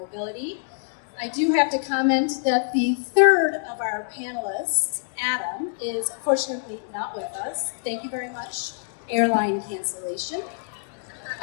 I do have to comment that the third of our panelists, Adam, is unfortunately not with us. Thank you very much, airline cancellation.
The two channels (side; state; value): right; silent; digital silence